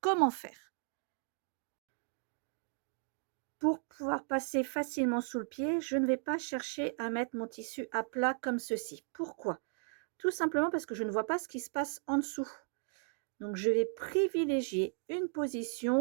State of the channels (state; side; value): silent; left; 54 dB below the other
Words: faire? Pour pouvoir passer facilement sous le pied, je ne vais pas chercher à mettre mon tissu à plat comme ceci. Pourquoi? Tout simplement parce que je ne vois pas ce qui se passe en dessous. Donc, je vais privilégier une